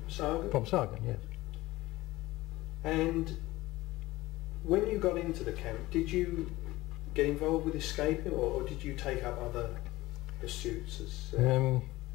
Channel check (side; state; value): right; quieter; 18.6 dB